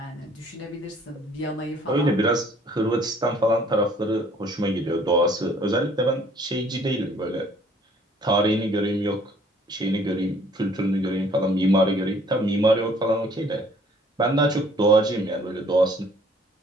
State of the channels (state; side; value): normal; both; correlation 0.58